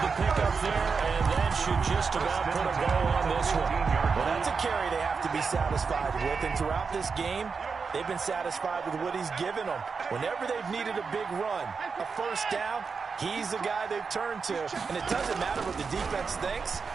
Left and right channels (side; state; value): left; quieter; 5.2 dB